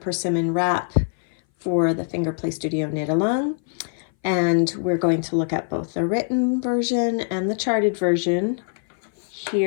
Wrap for the Fingerplay Studio Knit Along. And we're going to look at both the written version and the charted version.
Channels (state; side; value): silent; right; 60 dB below the other